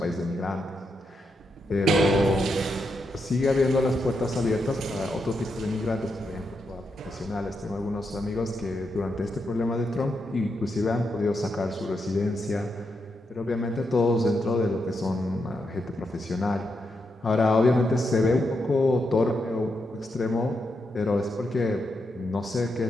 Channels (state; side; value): normal; both; correlation 0.83